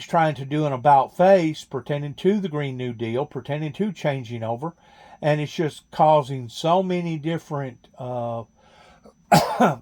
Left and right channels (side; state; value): both; identical; correlation 1.00